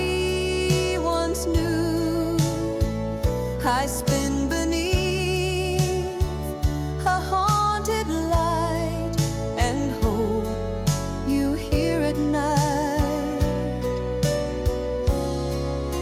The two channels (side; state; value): both; identical; correlation 1.00